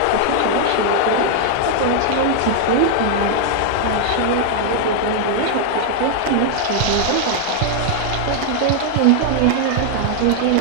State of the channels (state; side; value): different; both; correlation 0.00